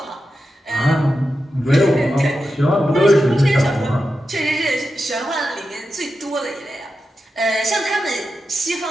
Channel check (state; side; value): normal; both; correlation 0.90